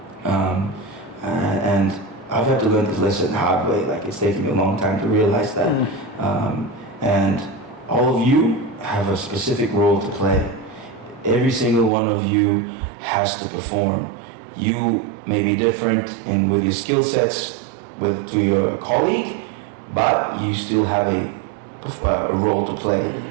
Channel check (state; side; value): drops out; left; at 11.9 s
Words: And I've had to learn this lesson the hard way. Like, it's taken me a long time to realize that. And all of you have a specific role to play. Every single one of you has to perform. You may be different in with your skill sets to your colleague, but you still have a role to play.